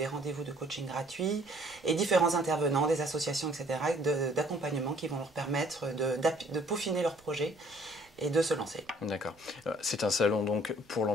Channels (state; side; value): noise; right; rumble, 29 dB below the sound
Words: rendez-vous de coaching gratuits et différents intervenants, des associations, etc. d'accompagnement qui vont leur permettre de peaufiner leur projet et de se lancer. D'accord. C'est un salon donc pour